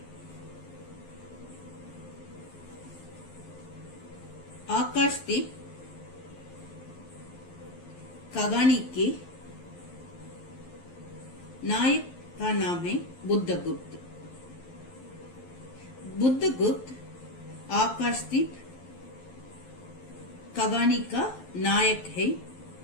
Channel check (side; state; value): right; late; 11 ms